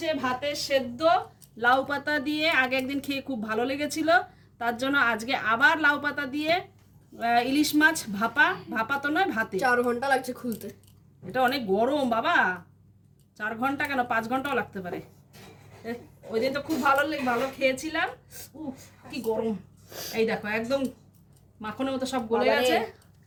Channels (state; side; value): identical; both; correlation 1.00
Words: ভাতের সেদ্ধ লাউ পাতা দিয়ে, আগে একদিন খেয়ে খুব ভালো লেগেছিল, তার জন্য আজকে আবার লাউ পাতা দিয়ে ইলিশ মাছ ভাপা। ভাপা তো নয়, ভাতে। 4 ঘন্টা লাগছে খুলতে। এটা অনেক গরম বাবা, 4 ঘন্টা কেন 5 ঘন্টাও লাগতে পারে। ওই দিন তো খুব ভালো খেয়েছিলাম। কি গরম, এই দেখো একদম মাখনের মতো সব গলে গেছে।